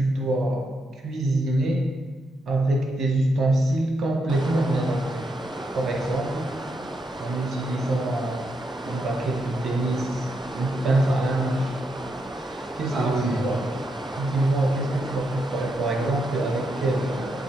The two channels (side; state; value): both; normal; correlation 0.81